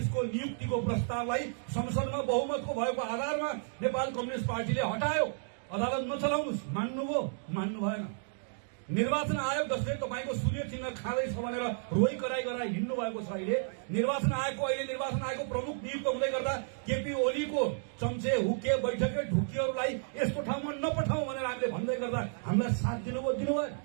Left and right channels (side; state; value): left; silent; digital silence